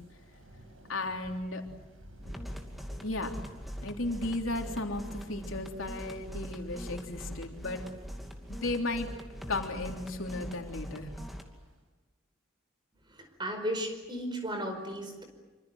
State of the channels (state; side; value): normal; both; correlation 0.36